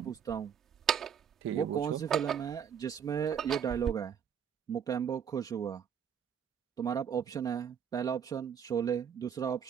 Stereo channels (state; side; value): quieter; left; 8.0 dB